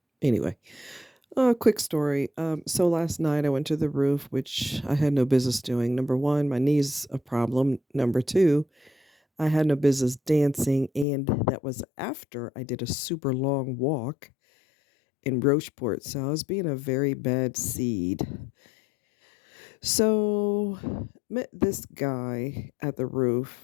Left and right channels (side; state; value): right; drops out; at 11.1 s